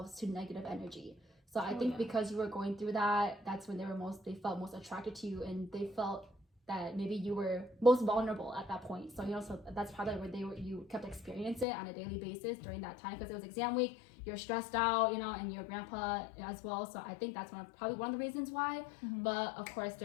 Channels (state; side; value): drops out; right; at 11.7 s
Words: to negative energy. So I think because you were going through that, that's when they felt most attracted to you, and they felt that maybe you were most vulnerable at that point. So so that's probably where you kept experiencing it on a daily basis during that time, because it was exam week, you're stressed out, and your grandpa as well. So I think that's probably one of the reasons why. But of course,